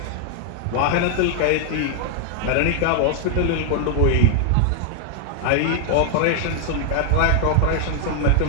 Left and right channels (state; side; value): different; both; correlation 0.00